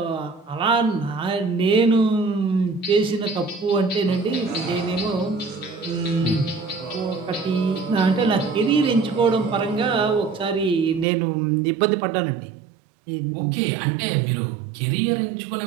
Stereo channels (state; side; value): drops out; left; at 11.1 s